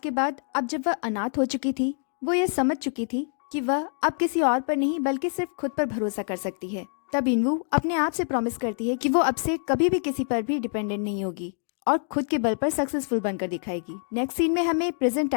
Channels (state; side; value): silent; right; 61 dB below the other